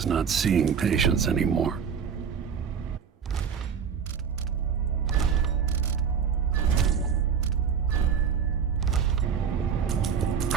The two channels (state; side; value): quieter; left; 7.1 dB